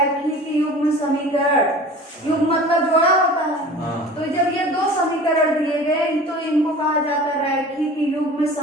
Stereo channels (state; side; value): normal; both; correlation 0.41